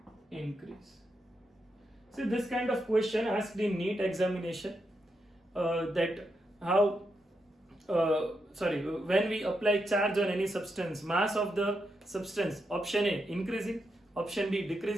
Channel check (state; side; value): normal; both; correlation 0.84